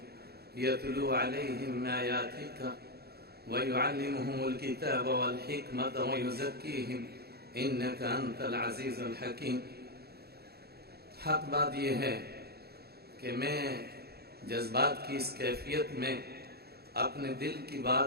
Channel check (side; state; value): left; late; 0.46 ms